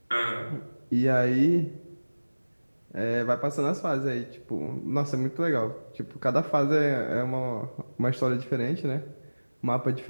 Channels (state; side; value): inverted; both; correlation -1.00